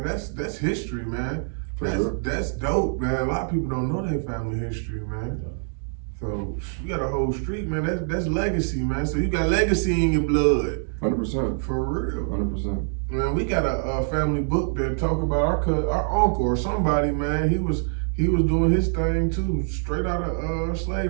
That's history, man. That's dope, man. A lot of people don't know their family history, man. So you got a whole street, man. That's legacy, man. So you got legacy in your blood. 100%. For real. 100%. Man, we got a family book that talk about our uncle or somebody, man. He was doing his thing too, straight out of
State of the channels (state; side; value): silent; left; digital silence